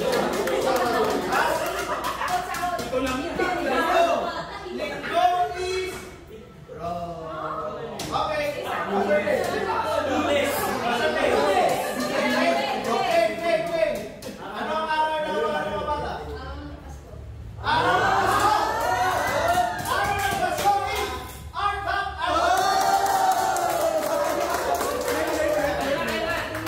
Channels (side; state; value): both; identical; correlation 1.00